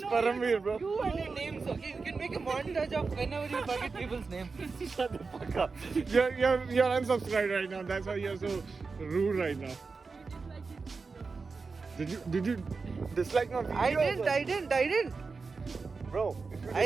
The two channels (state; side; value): quieter; left; 4.5 dB